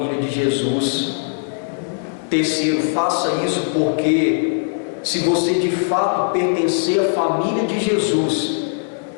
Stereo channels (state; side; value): silent; right; digital silence